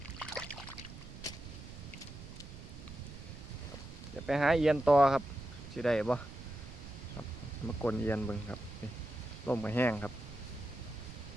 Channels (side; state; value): right; noise; rumble, 13 dB below the sound